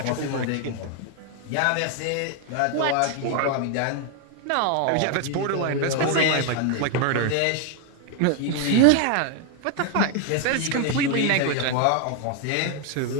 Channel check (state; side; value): different; both; correlation 0.01